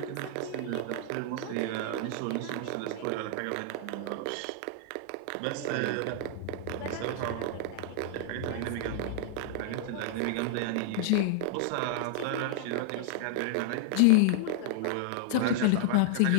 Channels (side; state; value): both; different; correlation -0.01